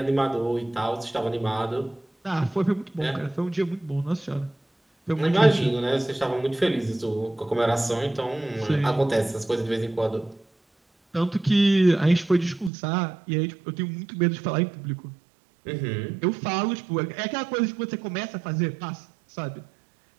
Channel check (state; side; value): drops out; left; at 12.7 s